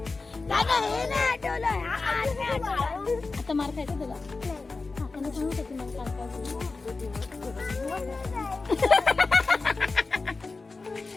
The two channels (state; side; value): quieter; right; 3.9 dB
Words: दादा हे नाही आठवलं आता मार खायचं तुला काकाने सांगत होती मला